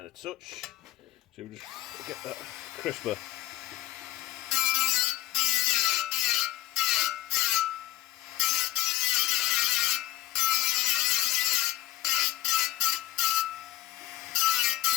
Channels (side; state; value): right; quieter; 15.7 dB